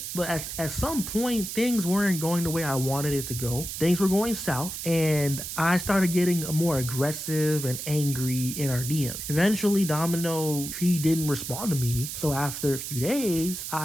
at some point things weren't going the way I wanted it to go. Things were going south, and I started getting more aggressive and angry in our DM. Eventually, Domino, he didn't respond to me. So after a few days,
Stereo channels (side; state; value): right; noise; hiss, 6 dB below the sound